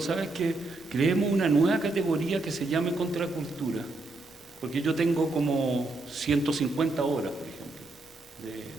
¿sabes qué? Creemos una nueva categoría que se llame contracultura, porque yo tengo como 150 horas, por ejemplo,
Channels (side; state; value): left; quieter; 3.1 dB